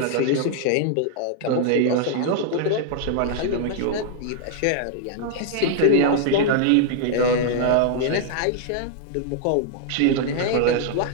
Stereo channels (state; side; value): different; both; correlation -0.01